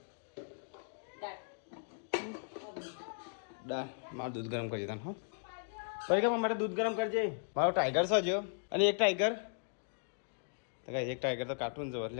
દાળ મારું દૂધ ગરમ કરી દેતા હો પરીક્ષામાં મારે દૂધ ગરમ કરજે મારો ટાઈગર છે જો અને એક ટાઈગર તો કઈ એક ટાઈગર તો કાર્ટૂન જો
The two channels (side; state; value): right; silent; digital silence